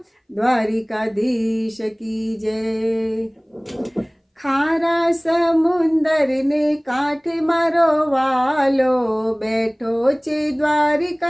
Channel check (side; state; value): both; identical; correlation 1.00